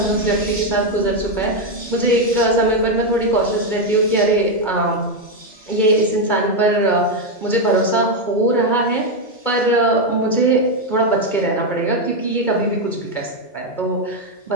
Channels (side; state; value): right; late; 2.3 ms